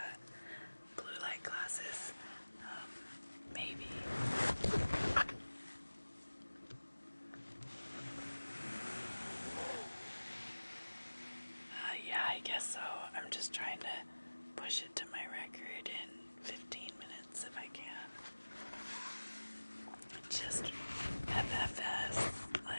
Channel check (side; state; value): both; inverted; correlation -1.00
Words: Blue light glasses, maybe. Yeah, I guess so. I'm just trying to push it to my record in 15 minutes if I can. Just FFS,